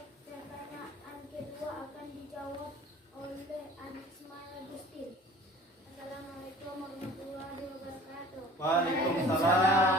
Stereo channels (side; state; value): both; normal; correlation 0.47